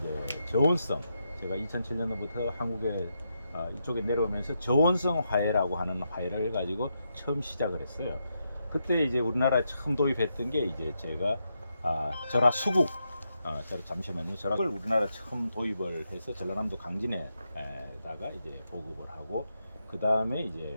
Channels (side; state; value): both; inverted; correlation -0.83